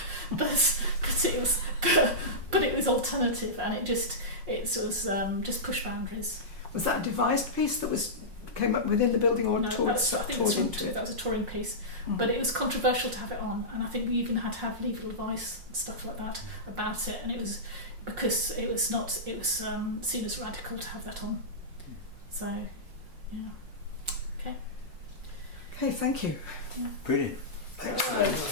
it was alternative, and it was just push boundaries. Was that a devised piece that came up within the building, or No, toured I think into it? that was a touring piece, but it was controversial to have it on, and I think we even had to have legal advice and stuff like that about it, and it was because it was seen as radical to have that on. So, yeah. Okay, thank you. Yeah. Brilliant. Excellent. That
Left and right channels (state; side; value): late; left; 5.5 ms